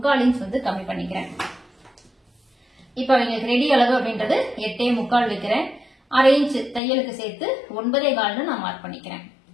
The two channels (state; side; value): drops out; right; at 6.8 s